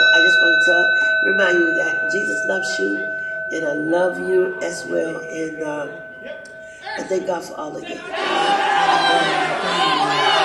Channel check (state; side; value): identical; both; correlation 1.00